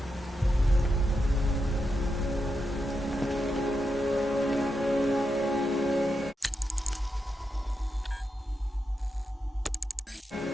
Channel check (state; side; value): normal; both; correlation 0.86